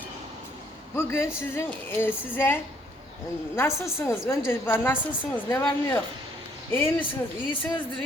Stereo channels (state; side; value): normal; both; correlation 0.65